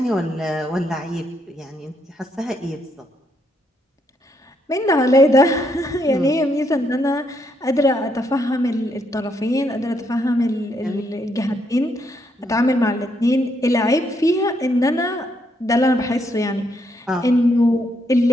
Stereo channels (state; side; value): normal; both; correlation 0.75